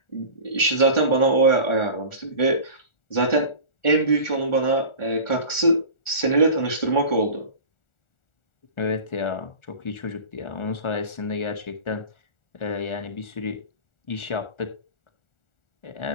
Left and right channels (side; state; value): right; late; 1.4 ms